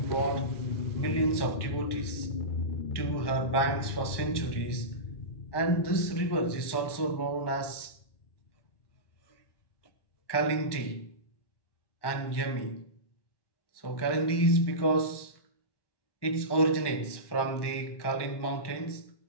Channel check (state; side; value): late; right; 1.1 ms